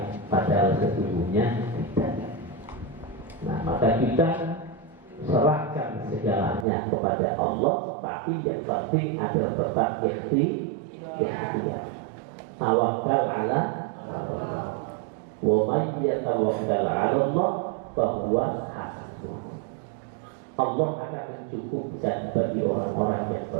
padahal sesungguhnya tidak. Nah, maka kita serahkan segalanya kepada Allah, tapi yang penting adalah tetap ikhtiar. Tawakal ala Allah. Wa may yatawakkal ala Allah fahuwa hasbuh. Allah akan mencukupkan bagi orang-orang yang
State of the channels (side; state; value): left; drops out; at 6.7 s